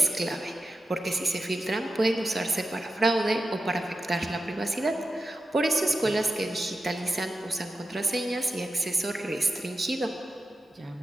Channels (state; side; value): normal; both; correlation 0.90